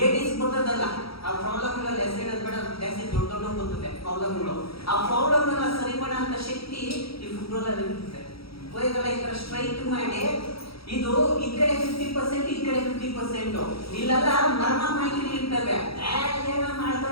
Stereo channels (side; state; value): right; late; 0.76 ms